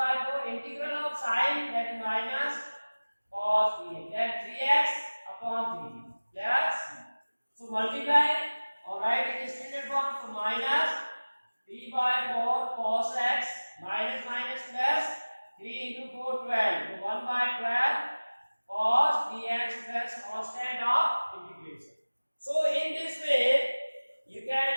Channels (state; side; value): inverted; both; correlation -1.00